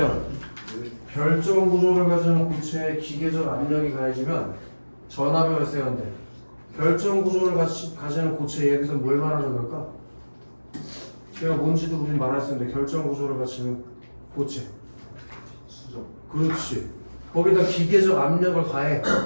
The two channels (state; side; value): inverted; both; correlation -1.00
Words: 결정 구조를 가지는 고체에 기계적 압력이 가해지면 전압이 발생한대. 결정 구조를 가지는 고체 여기서 뭘 말하는 걸까? 제가 뭔지도 우린 말할 수 있는데 결정 구조를 가지는 고체. 수정. 그렇지. 거기다 기계적 압력을 가해.